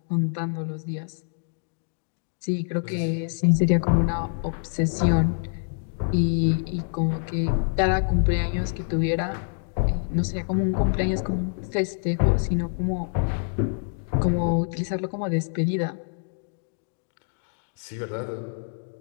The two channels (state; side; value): silent; right; digital silence